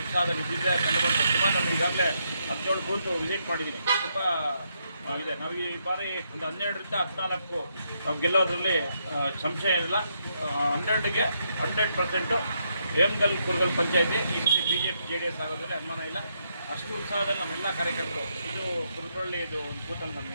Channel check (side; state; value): both; inverted; correlation -0.77